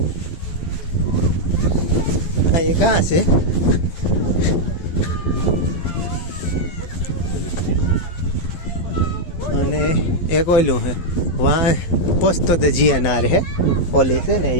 આ એ કાં છે? અને એક ઓલું હે વાં પોસ્તો તો જીએનઆર હે પોલીસ છે ને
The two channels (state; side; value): late; right; 12 ms